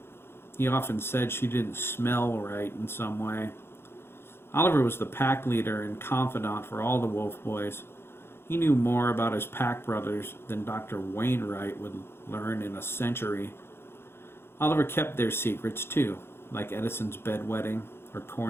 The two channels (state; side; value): late; right; 0.11 ms